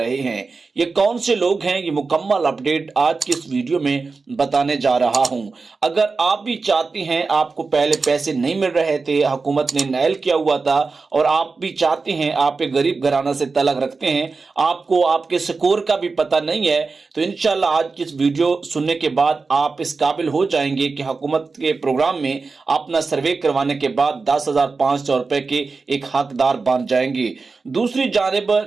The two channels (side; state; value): left; quieter; 4.3 dB